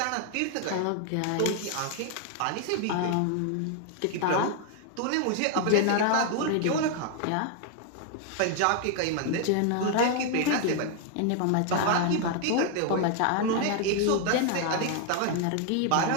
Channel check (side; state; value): both; different; correlation 0.00